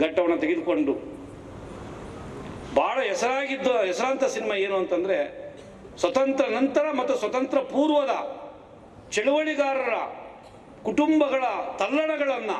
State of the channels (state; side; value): identical; both; correlation 1.00